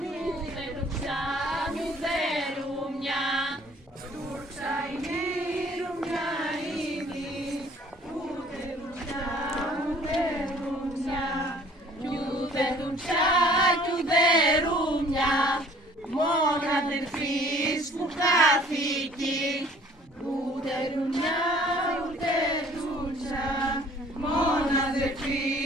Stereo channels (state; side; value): normal; both; correlation 0.54